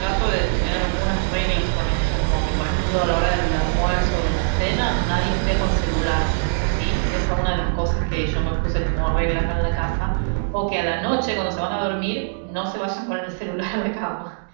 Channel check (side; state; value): left; silent; digital silence